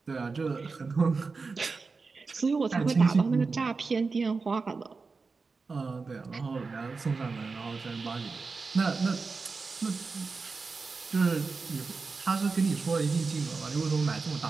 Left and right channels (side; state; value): left; quieter; 4.4 dB